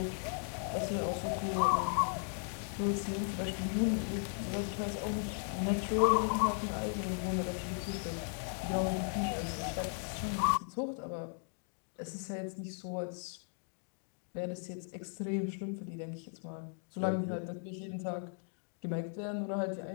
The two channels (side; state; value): right; silent; 53 dB below the other